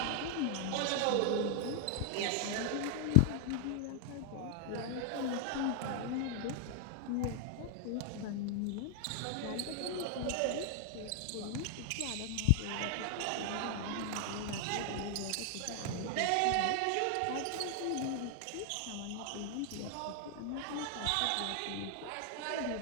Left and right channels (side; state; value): both; different; correlation 0.00